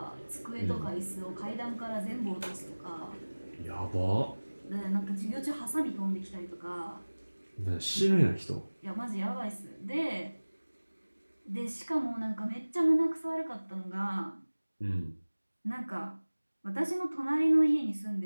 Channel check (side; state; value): both; inverted; correlation -1.00